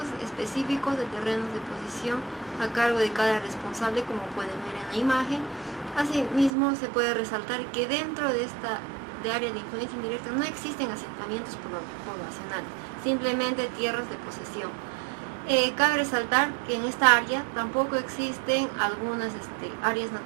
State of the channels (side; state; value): left; drops out; at 6.5 s